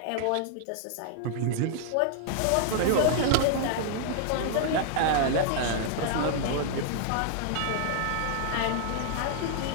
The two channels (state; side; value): different; both; correlation -0.01